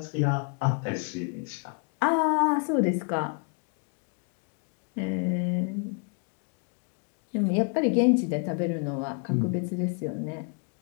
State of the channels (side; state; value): right; quieter; 37.7 dB